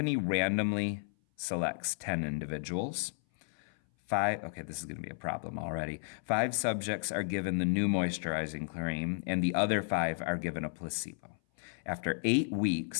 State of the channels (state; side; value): silent; right; 56 dB below the other